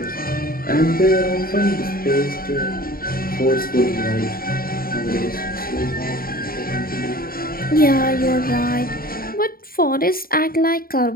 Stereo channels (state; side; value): late; right; 0.43 ms